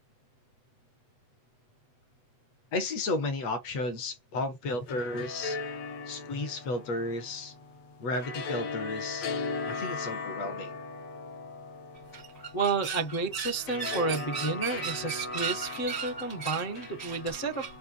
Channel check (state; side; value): late; right; 8.0 ms